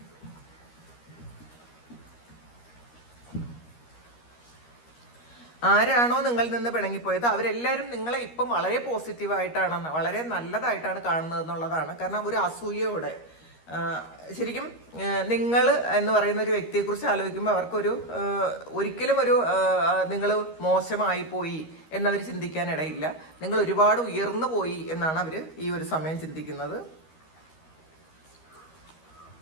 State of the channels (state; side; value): late; right; 13 ms